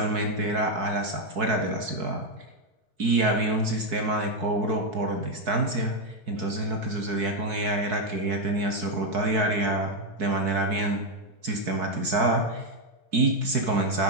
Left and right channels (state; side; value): late; left; 4.6 ms